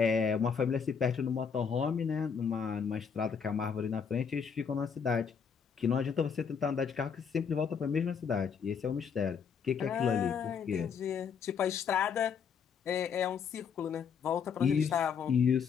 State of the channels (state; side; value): quieter; right; 6.6 dB